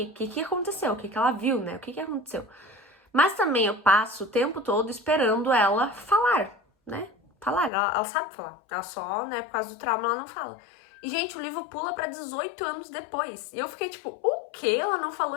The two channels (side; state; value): right; drops out; at 7.7 s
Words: aconteceu, o que ela viu, né? O que aconteceu. Mas também eu passo o tempo todo esperando ela falar, né? Falar, ela sabe falar. Ela só, né, por causa do trauma, ela não fala. E, gente, o livro pula pra 18 anos depois. E eu fiquei tipo, o que? Ela não falou